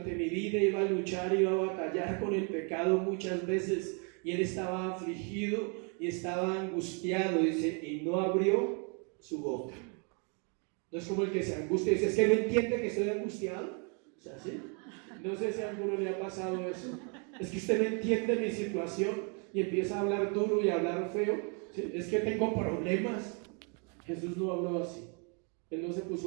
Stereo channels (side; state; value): left; quieter; 36.9 dB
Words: mi vida iba a luchar, iba a batallar con el pecado muchas veces. Y él estaba afligido y estaba angustiado, dice, y no abrió su boca. No es como el que se angustia y dice, es que no entiende que estoy angustiado. O sea, ¿sí? No sé si a alguno le ha pasado eso. Es que usted no entiende mi situación y empieza a hablar duro y a hablar feo. ¿Sí? Es que tengo problemas. Jesús no habló así. Él no se